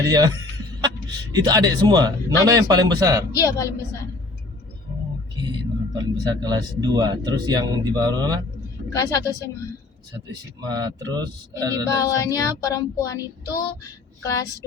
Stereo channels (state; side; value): quieter; right; 3.0 dB